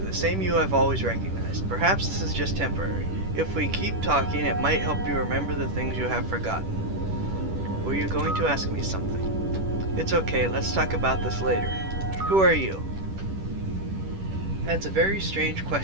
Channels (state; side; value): late; left; 10 ms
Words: same you I've always recognized. Perhaps this is just temporary. If we keep talking, it might help you remember the things you have forgotten. Were you going to ask me something? It's okay, let's talk about this later. Who are you? That's a very strange